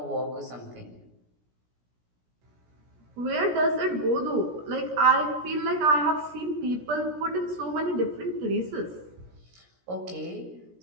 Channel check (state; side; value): late; left; 17 ms